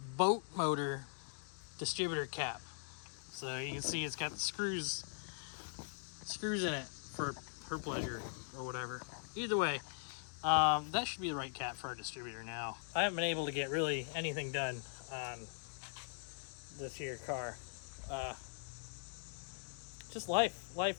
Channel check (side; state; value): right; silent; digital silence